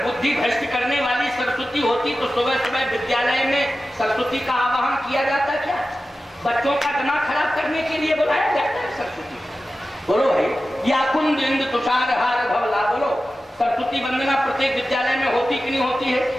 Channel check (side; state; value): both; normal; correlation 0.94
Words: बुद्धि भ्रष्ट करने वाली सरस्वती होती तो सुबह सुबह विद्यालय में सरस्वती का आवाहन किया जाता क्या? बच्चों का दिमाग खराब करने के लिए बुलाया जाता है सरस्वती? बोलो भाई। या कुंद इंद तुषार हार भवला। बोलो, सरस्वती वंदना प्रत्येक विद्यालय में होती कि नहीं होती है?